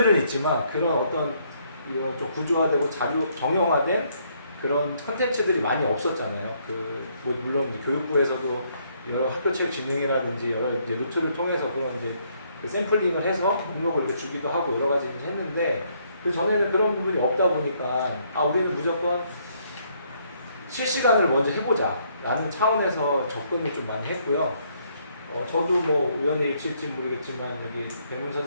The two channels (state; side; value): inverted; both; correlation -0.69